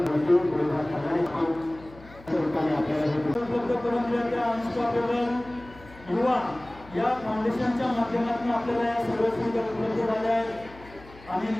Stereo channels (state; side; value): noise; left; hum, 21 dB below the sound